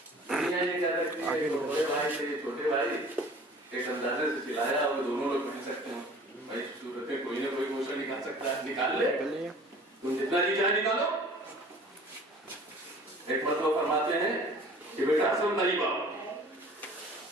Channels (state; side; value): normal; both; correlation 0.47